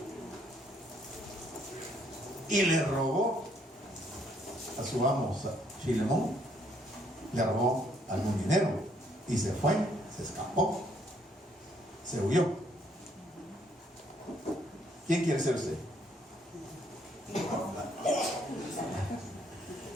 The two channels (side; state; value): both; normal; correlation 0.68